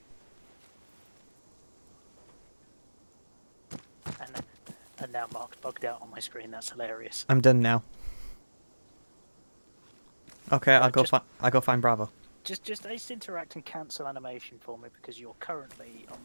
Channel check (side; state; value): both; inverted; correlation -1.00